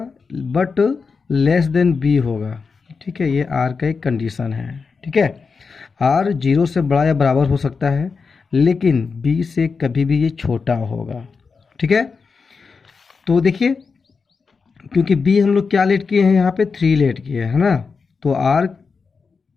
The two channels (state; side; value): quieter; right; 5.0 dB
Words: बट लेस देन बी होगा। ठीक है, ये आर का एक कंडीशन है। ठीक है, आर 0 से बड़ा या बराबर हो सकता है, लेकिन बी से कभी भी ये छोटा होगा। ठीक है, तो देखिए क्योंकि बी हम लोग क्या लेट किए हैं, यहाँ पे 3 लेट किए हैं, है ना, तो आर